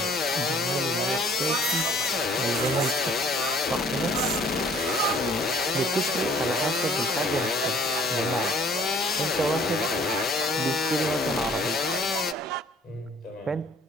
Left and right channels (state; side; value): normal; both; correlation 0.55